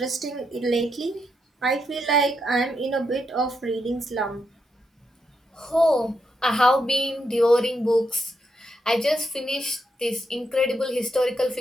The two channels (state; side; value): normal; both; correlation 0.81